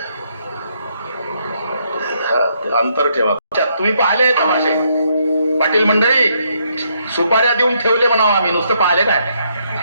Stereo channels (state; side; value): inverted; both; correlation -0.73